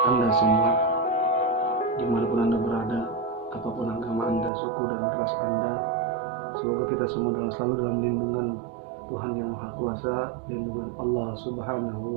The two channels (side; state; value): left; drops out; at 4.5 s